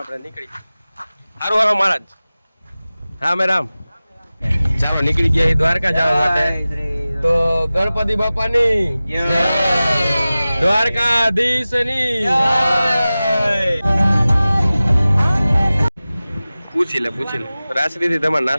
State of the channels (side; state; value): both; inverted; correlation -0.97